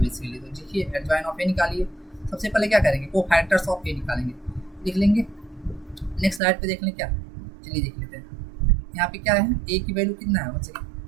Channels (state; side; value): drops out; left; at 6.4 s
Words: तो देखिए एडजॉइन ऑफ ए निकालिए, सबसे पहले क्या करेंगे को फैक्टर्स ऑफ ए निकालेंगे, लिख लेंगे, नेक्स्ट स्लाइड पे देख लें क्या, चलिए देख लेते हैं यहाँ पे क्या है, ए की वैल्यू कितना है बच्चे,